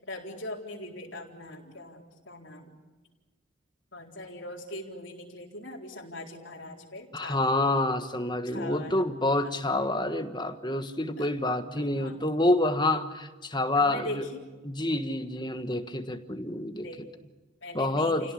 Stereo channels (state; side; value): normal; both; correlation 0.44